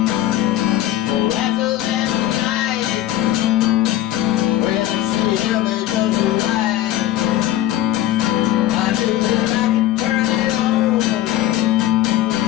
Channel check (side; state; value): right; quieter; 13.4 dB